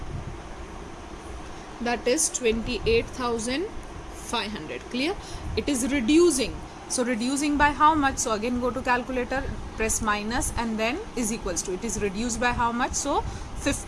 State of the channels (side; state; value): both; identical; correlation 1.00